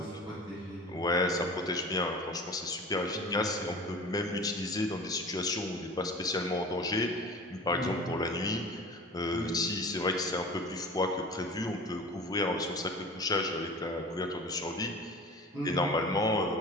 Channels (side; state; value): both; normal; correlation 0.38